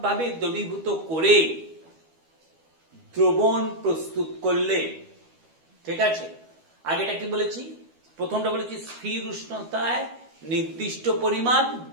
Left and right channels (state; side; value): late; left; 12 ms